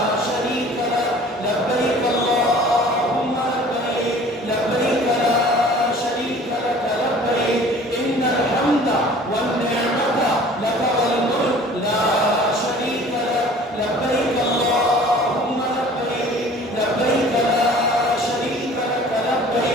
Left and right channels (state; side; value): normal; both; correlation 0.48